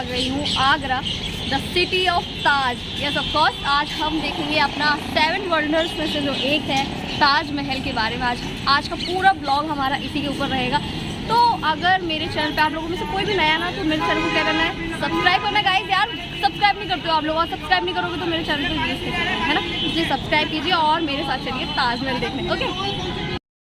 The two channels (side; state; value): both; identical; correlation 1.00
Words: गई हूँ Agra, the city of Taj. Yes of course, आज हम देखेंगे अपना 7 वंडर्स में से जो एक है ताजमहल के बारे में। आज का पूरा ब्लॉग हमारा इसी के ऊपर रहेगा। तो अगर मेरे चैनल पे आप लोगों में से कोई भी नया ना, तो मेरे चैनल को क्या करना है, सब्सक्राइब करना है। गाइस यार सब्सक्राइब नहीं करते हो आप लोग, और सब्सक्राइब नहीं करोगे तो मेरे चैनल को यूज़ है ना, इसलिए सब्सक्राइब कीजिए और मेरे साथ चलिए ताजमहल देखने। ओके,